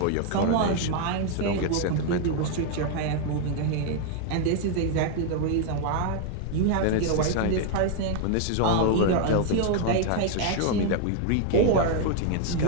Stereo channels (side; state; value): both; different; correlation 0.00